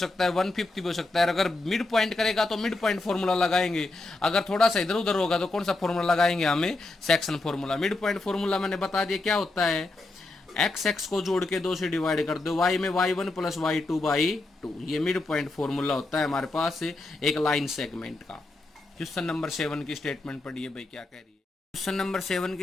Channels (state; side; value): quieter; right; 3.1 dB